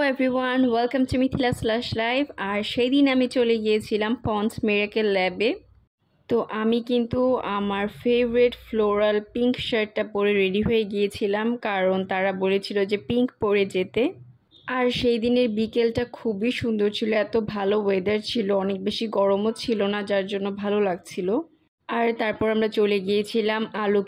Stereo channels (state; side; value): identical; both; correlation 1.00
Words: everyone, welcome to Mithila slash live. আর সেই দিন আমি চলে গিয়েছিলাম পন্ডস মিরাকেল ল্যাবে। তো আমি কিন্তু আমার ফেভারিট ফ্লোরাল পিঙ্ক শার্টটা পরে রেডি হয়ে গিয়েছিলাম, কারণ তারা বলেছিল যে পিঙ্ক পরে যেতে। আর সেই দিনের বিকেলটা খুবই সুন্দর ছিল, এত ভালো ওয়েদার ছিল, অনেক বেশি গরমও ছিল না, যার জন্য ভালো লাগছিল। আর তারপর আমরা চলে গিয়েছিলাম